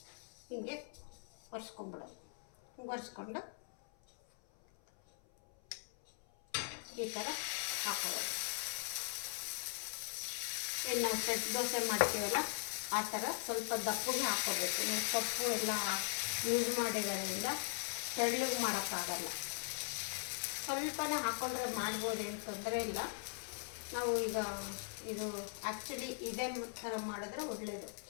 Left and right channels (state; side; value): silent; right; 51 dB below the other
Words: ಹಿಂಗೆ ಒರೆಸ್ಕೊಂಡ್ಬಿಡೋದು. ಒರೆಸ್ಕೊಂಡು ಈ ಥರ ಹಾಕೋದು. ಏನು ನಾವು ಸೆಟ್ ದೋಸೆ ಮಾಡ್ತೀವಲ್ಲ ಆ ಥರ ಸ್ವಲ್ಪ ದಪ್ಪಗೆ ಹಾಕೋಬೇಕು. ನೀವು ಸೊಪ್ಪು ಎಲ್ಲ ಯೂಸ್ ಮಾಡಿರೋದ್ರಿಂದ ತೆಳ್ಳಗೆ ಮಾಡೋಕ್ಕಾಗಲ್ಲ. ಸ್ವಲ್ಪನೇ ಹಾಕ್ಕೊಂಡ್ರೆ ಮಾಡ್ಬೋದು, ಏನು ತೊಂದರೆ ಇಲ್ಲ. ನಾವು ಈಗ ಇದು ಆ್ಯಕ್ಚುಲಿ ಇದೇ ಥರ ಮಾಡಿದ್ರೆ ಒಳ್ಳೆಯದು,